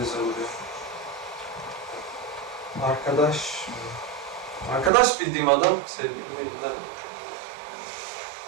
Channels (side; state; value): left; drops out; at 4.9 s